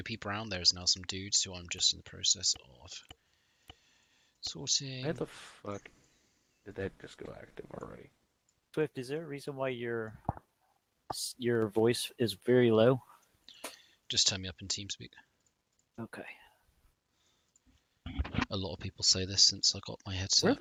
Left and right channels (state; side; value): identical; both; correlation 1.00